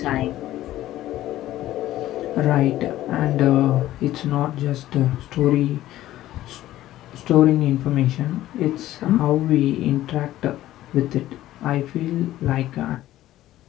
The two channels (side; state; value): right; quieter; 14.5 dB